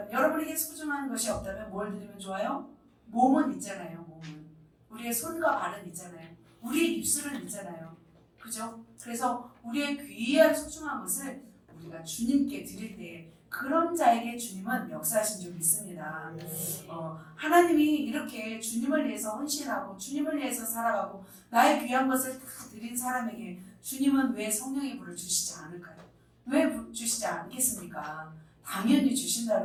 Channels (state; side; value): identical; both; correlation 1.00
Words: 여러분에게 소중한 것이 없다면 뭘 드리면 좋아요? 몸은 있잖아요. 몸은 우리의 손과 발은 있잖아요. 우리의 입술은 있잖아요. 그죠? 그래서 우리의 귀한 소중한 것을 우리가 주님께 드릴 때 그런 자에게 주님은 역사하신 줄 믿습니다. 하나님이 이렇게 주님을 위해서 헌신하고 주님을 위해서 살아가고 나의 귀한 것을 다 드린 사람에게 주님은 왜 성령의 불을 주시지 않을까요? 왜 주시지 않겠습니까? 당연히